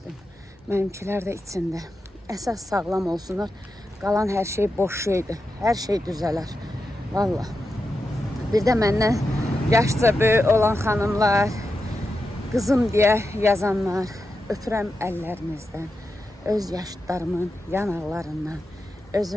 Mənimkilər də içində. Əsas sağlam olsunlar. Qalan hər şey boş şeydir. Hər şey düzələr. Vallahi. Bir də məndən yaşca böyük olan xanımlar, qızım deyə yazanlar, öpürəm əllərinizdən, öz yaşıtlarımın yanaqlarından,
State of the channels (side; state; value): both; normal; correlation 0.88